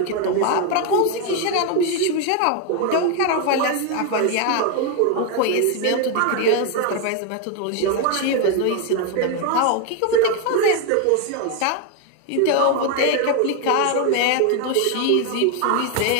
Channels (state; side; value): different; both; correlation 0.01